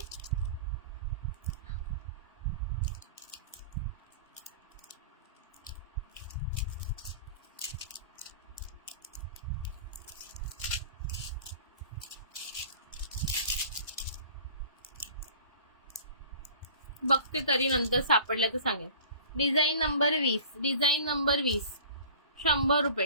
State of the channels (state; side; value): inverted; both; correlation -0.43